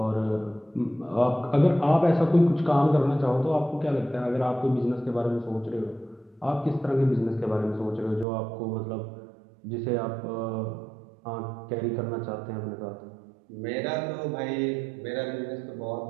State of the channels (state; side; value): drops out; left; at 8.2 s